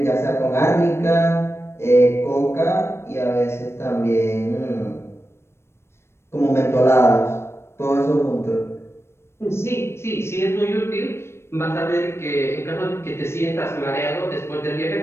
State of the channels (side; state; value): right; late; 0.12 ms